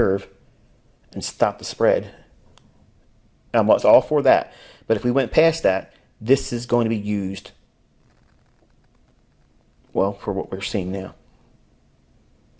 and stop the spread. I was all for that. But if we went past that, this is going to be used, well, for what we're seeing now.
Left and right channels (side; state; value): both; identical; correlation 1.00